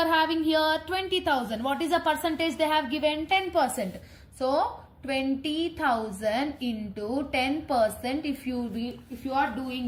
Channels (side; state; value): both; identical; correlation 1.00